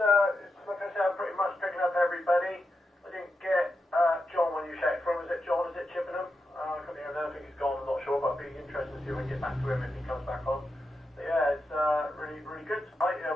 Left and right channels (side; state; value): both; normal; correlation 0.87